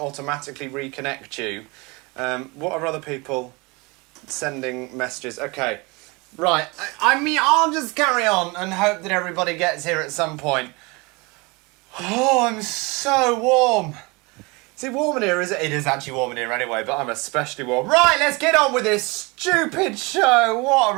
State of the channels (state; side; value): quieter; left; 26.7 dB